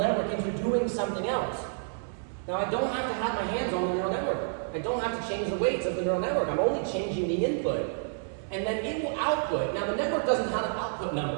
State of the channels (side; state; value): left; silent; digital silence